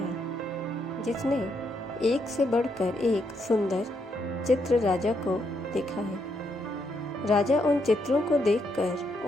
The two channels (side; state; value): both; normal; correlation 0.77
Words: जिसने एक से बढ़कर एक सुंदर चित्र राजा को दिखाए। राजा उन चित्रों को देखकर